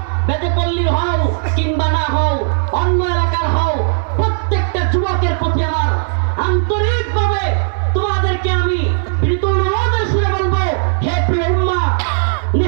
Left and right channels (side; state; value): left; silent; 69 dB below the other